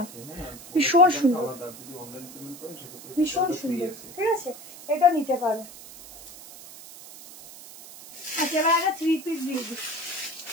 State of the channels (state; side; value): noise; right; hiss, 16 dB below the sound